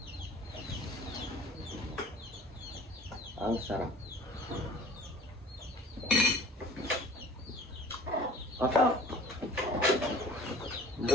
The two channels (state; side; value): normal; both; correlation 0.46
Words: Ang sarap. Masarap.